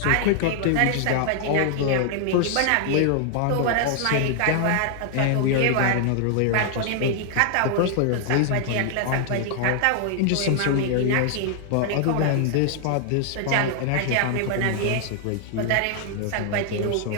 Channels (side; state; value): both; different; correlation 0.00